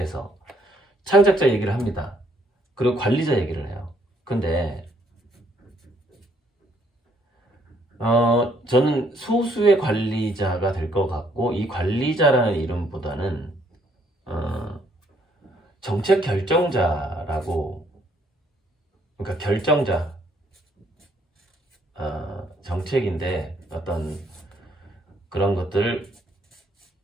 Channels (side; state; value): both; normal; correlation 0.68